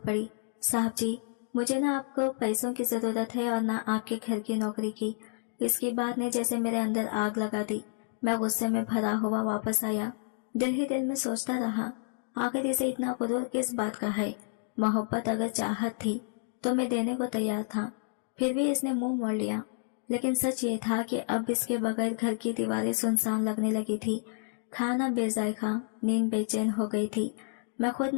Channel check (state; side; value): silent; right; 58 dB below the other